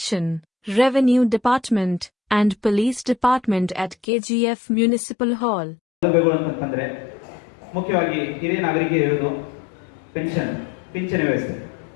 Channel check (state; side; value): drops out; right; at 4.0 s